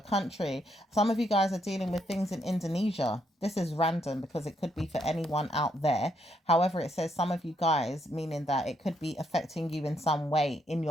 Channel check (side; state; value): both; normal; correlation 0.75